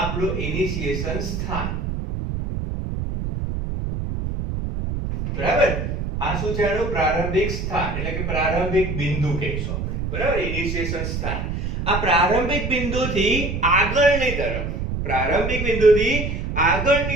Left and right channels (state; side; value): noise; right; rumble, 3 dB below the sound